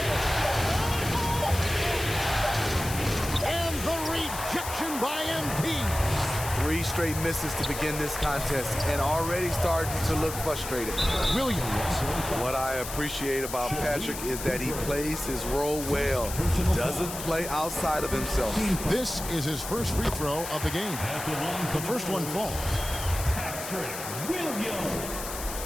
And the rejection by MP. 3 straight misses to begin this contest and already starting to look frustrated. Williams. What I appreciate about Patrick is that he plays his role well. He doesn't play outside of himself. This is his first free throw of the game. The first one falls.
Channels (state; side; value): noise; left; hiss, 8 dB below the sound